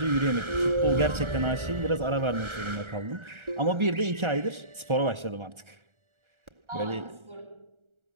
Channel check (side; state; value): left; late; 1.4 ms